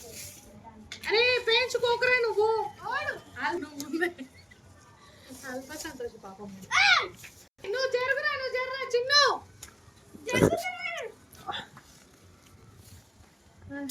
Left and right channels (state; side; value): identical; both; correlation 1.00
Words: అరే పేయించుకోకరా నువ్వు అల్ప సంతోష పాపం. నువ్వు జరుగురా చిన్ను.